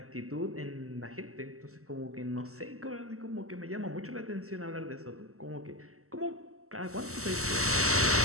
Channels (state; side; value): late; left; 0.64 ms